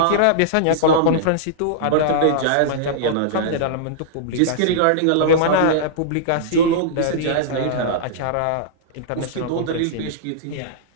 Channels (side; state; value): both; different; correlation -0.02